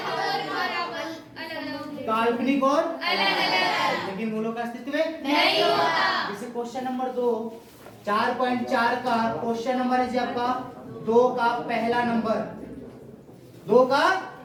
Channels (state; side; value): identical; both; correlation 1.00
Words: काल्पनिक और लेकिन मूलों का अस्तित्व नहीं होता। जैसे क्वेश्चन नंबर 2 4.4 का क्वेश्चन नंबर है जी आपका 2 का पहला नंबर, 2 का